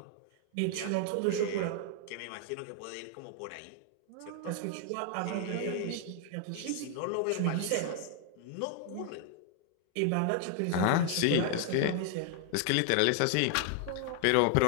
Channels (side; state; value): both; different; correlation 0.00